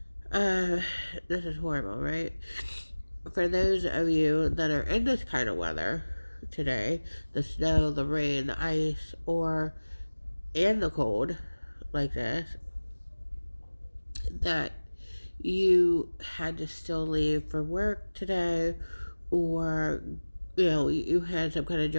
Uh, this is horrible, right? For those of you that are in this kind of weather today, the snow, the rain, the ice, or and the cold, like this, that you had to still leave for work today, or you had some kind of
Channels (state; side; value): inverted; both; correlation -1.00